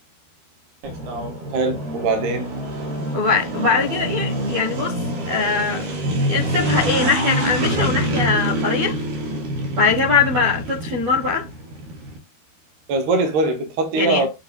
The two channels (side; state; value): left; late; 12 ms